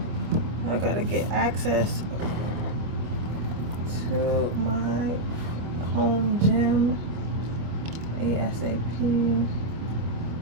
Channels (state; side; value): late; left; 25 ms